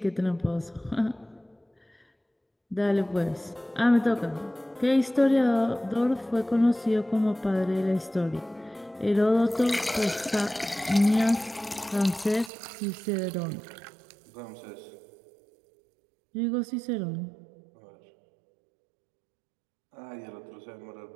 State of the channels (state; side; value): drops out; left; at 12.5 s